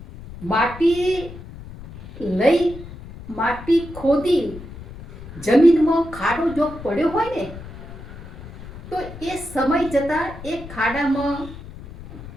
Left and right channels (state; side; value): noise; left; rumble, 14 dB below the sound